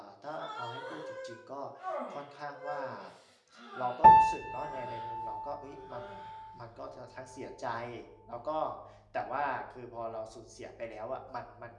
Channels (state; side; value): identical; both; correlation 1.00